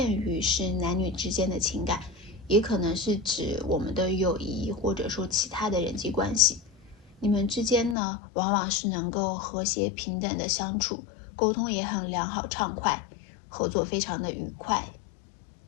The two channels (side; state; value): right; drops out; at 8.0 s